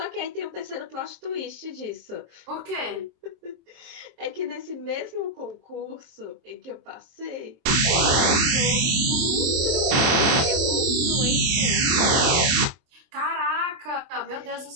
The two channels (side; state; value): left; late; 24 ms